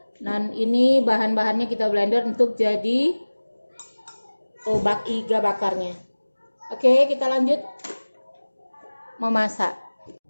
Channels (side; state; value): both; inverted; correlation -1.00